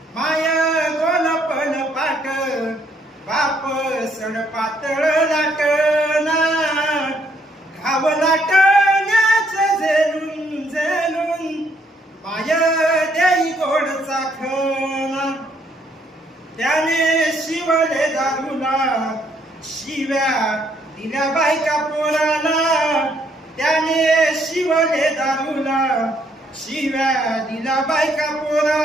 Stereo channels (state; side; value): normal; both; correlation 0.69